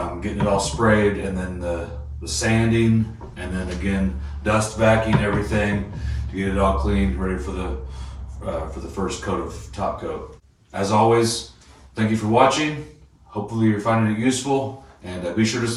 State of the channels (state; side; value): identical; both; correlation 1.00